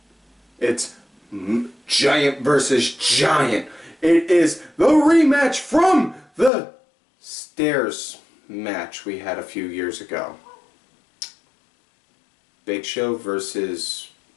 It's giant versus giant. It is the rematch from the stairs match we had a few years ago. Big Show versus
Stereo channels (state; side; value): drops out; right; at 6.5 s